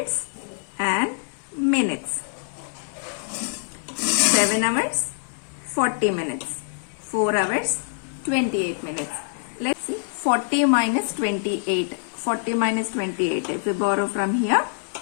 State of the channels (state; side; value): silent; right; digital silence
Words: and minutes. 7 hours 40 minutes, 4 hours 28 minutes. Let's see 40 minus 28. 40 minus 28. If we borrow from here,